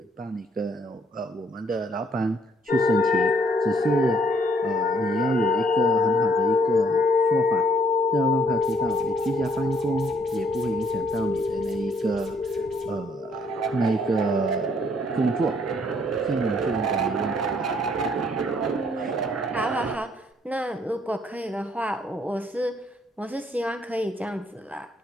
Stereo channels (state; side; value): normal; both; correlation 0.65